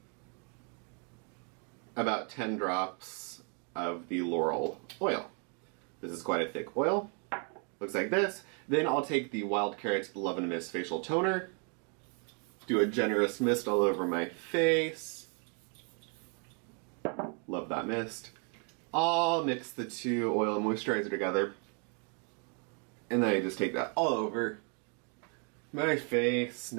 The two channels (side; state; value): left; quieter; 38.9 dB